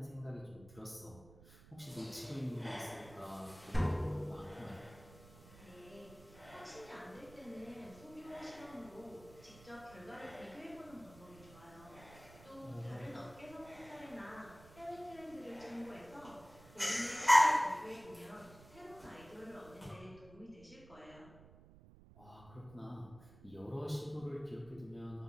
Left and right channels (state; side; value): noise; right; rumble, 20 dB below the sound